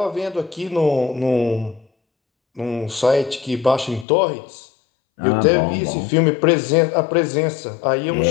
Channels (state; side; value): drops out; right; at 4.0 s